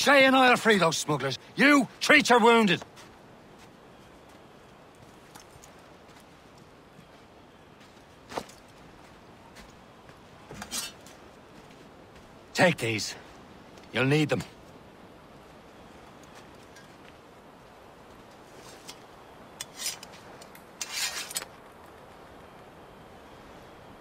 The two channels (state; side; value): identical; both; correlation 1.00